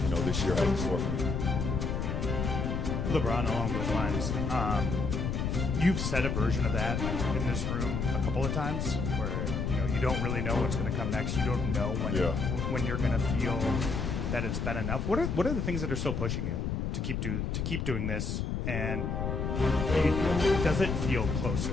this year has in store for me. LeBron, along those lines, you've said a version of that in this room a couple of times, where you don't really know what's going to come next. You don't know when you're going to feel that it's been enough. What are the things that are still pushing you to keep doing this? And does it feel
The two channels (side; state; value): left; noise; rumble, 1 dB below the sound